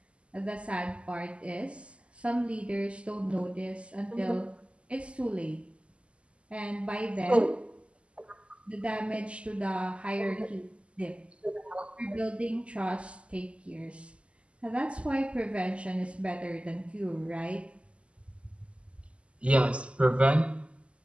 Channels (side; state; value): left; late; 0.056 ms